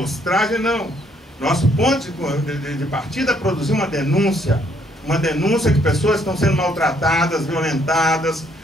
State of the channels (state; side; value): normal; both; correlation 0.68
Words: não. Nosso ponto de partida é produzir uma denúncia que pessoas estão sendo maltratadas, violentadas,